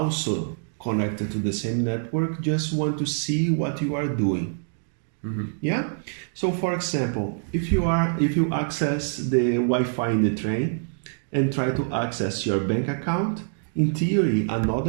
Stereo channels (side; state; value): left; silent; digital silence